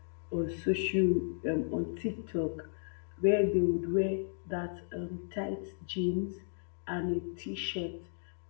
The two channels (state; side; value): silent; right; digital silence